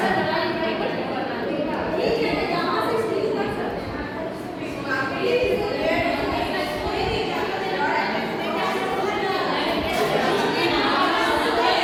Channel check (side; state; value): both; identical; correlation 1.00